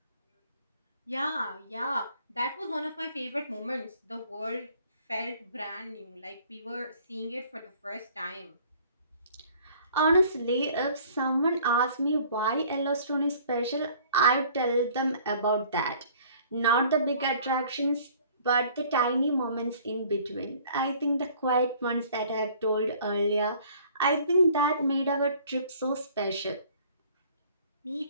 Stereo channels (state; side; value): inverted; both; correlation -0.54